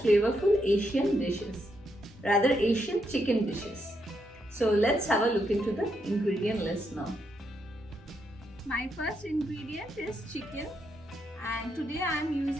flavorful Asian dishes, rather Asian chicken dishes. So let's have a look into the ingredient list now. My first ingredient is chicken, and today I am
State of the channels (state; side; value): normal; both; correlation 0.79